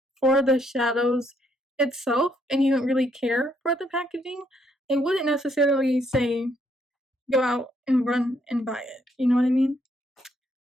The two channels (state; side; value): normal; both; correlation 0.71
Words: for the shadows itself and you don't really care for the packaging, I wouldn't necessarily say go out and run and buy it. You know what I mean?